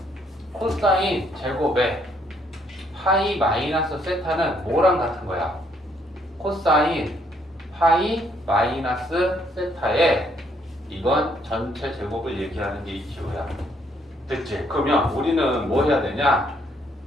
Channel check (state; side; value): normal; both; correlation 0.69